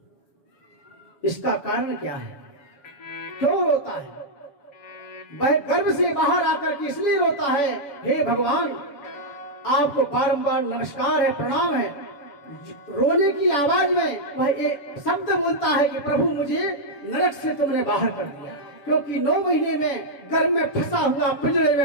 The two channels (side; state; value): right; late; 7.0 ms